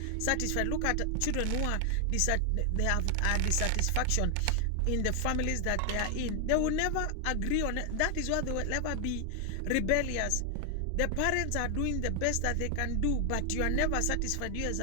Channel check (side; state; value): both; different; correlation 0.00